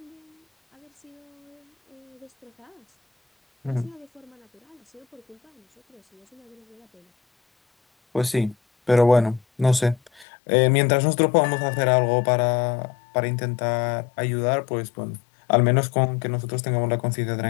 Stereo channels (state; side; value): drops out; right; at 10.2 s